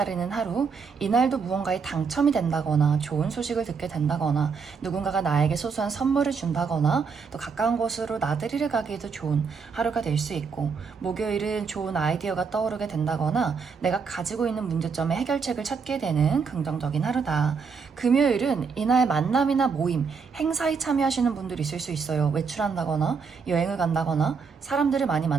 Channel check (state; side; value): quieter; left; 5.5 dB